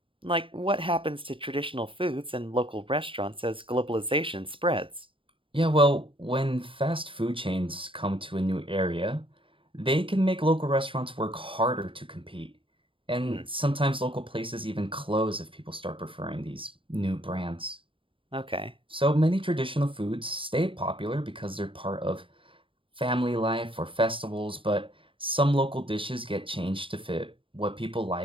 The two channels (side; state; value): left; late; 0.25 ms